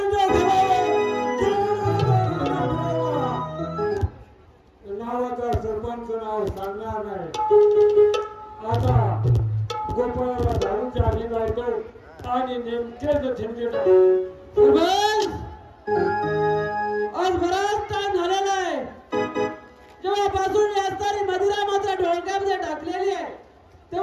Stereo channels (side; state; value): both; identical; correlation 1.00